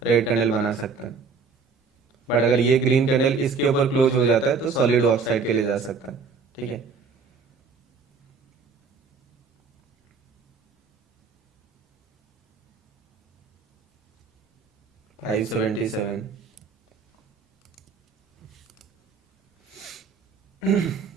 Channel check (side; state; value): left; quieter; 5.0 dB